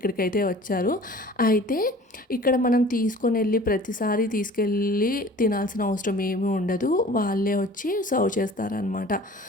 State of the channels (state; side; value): normal; both; correlation 0.45